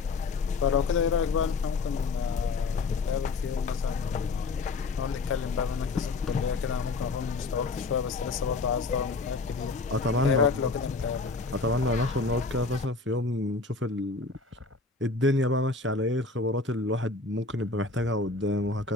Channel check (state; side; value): quieter; right; 3.7 dB